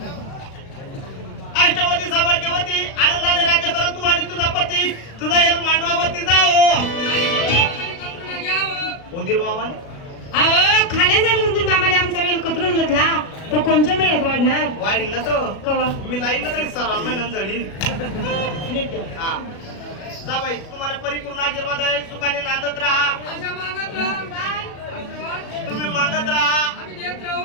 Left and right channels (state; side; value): late; right; 36 ms